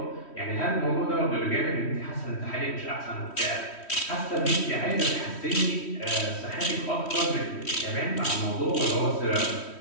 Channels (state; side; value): late; right; 3.1 ms